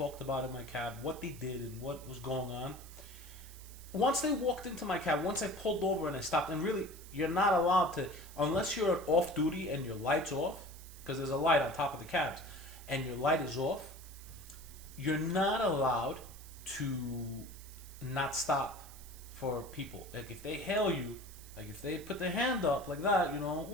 about in my cab, what they did, and what was going on. Once they walked into my cab, once I pulled over and I stopped, and really, you're not allowed to, unless you're off duty and your light's off, because there's a light on top of the cabs, and your light is off, you're not allowed to not stop for people. Like, if they hail you, like if they put their hand up like that,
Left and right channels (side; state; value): right; noise; hiss, 18 dB below the sound